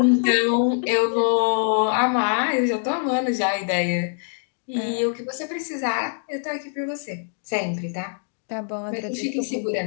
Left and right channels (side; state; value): right; silent; 63 dB below the other